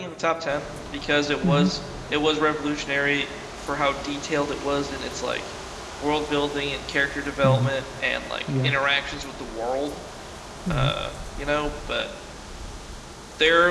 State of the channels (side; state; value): both; identical; correlation 1.00